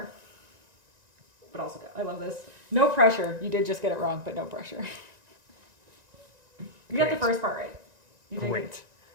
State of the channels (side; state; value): left; late; 1.9 ms